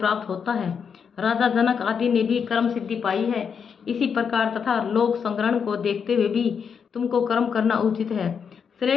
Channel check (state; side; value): quieter; right; 6.7 dB